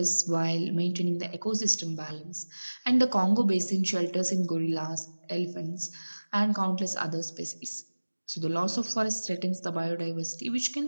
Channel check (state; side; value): inverted; both; correlation -1.00